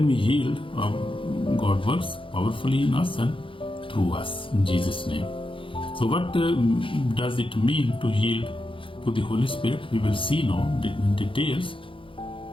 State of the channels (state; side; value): late; right; 0.25 ms